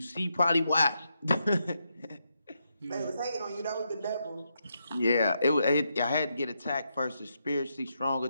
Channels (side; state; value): both; inverted; correlation -0.82